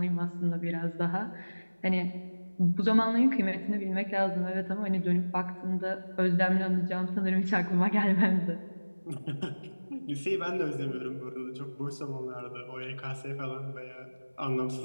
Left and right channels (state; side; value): inverted; both; correlation -1.00